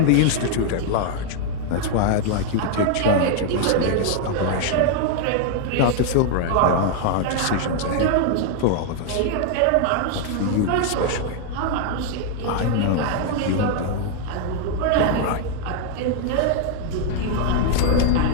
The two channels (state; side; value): different; both; correlation 0.00